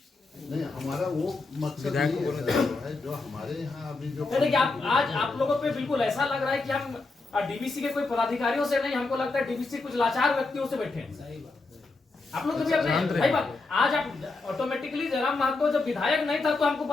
हमारा वो मकसद नहीं है जो हमारे यहाँ अभी जो देखिए, आज आप लोगों पे बिल्कुल ऐसा लग रहा है कि हम डीवीसी के कोई पदाधिकारियों से नहीं, हमको लगता है डीवीसी कुछ लाचार व्यक्तियों से बैठे हैं। आप लोग कभी अपने भाई बात, आज आप ऑटोमेटिकली जयराम महतो जब विधायक नहीं था तो हमको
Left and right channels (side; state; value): right; quieter; 3.6 dB